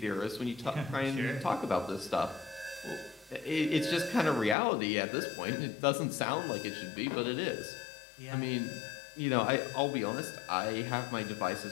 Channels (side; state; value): right; drops out; at 4.5 s